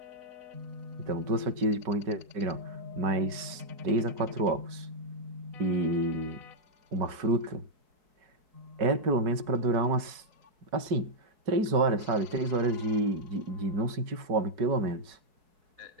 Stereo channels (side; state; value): left; late; 4.7 ms